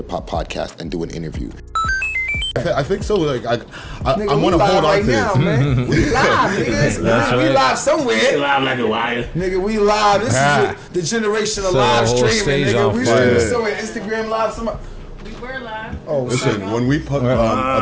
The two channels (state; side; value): identical; both; correlation 1.00